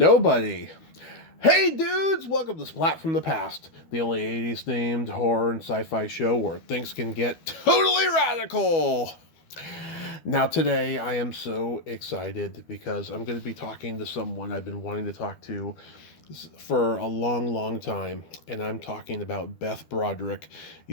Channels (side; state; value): right; late; 12 ms